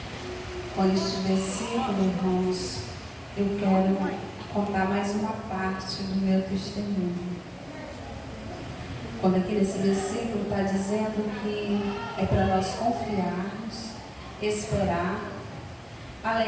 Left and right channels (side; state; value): both; identical; correlation 1.00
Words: Com este versículo, irmãos, eu quero contar mais uma parte do meu testemunho. Quando aqui nesse versículo está dizendo que é para nós confiarmos, esperar,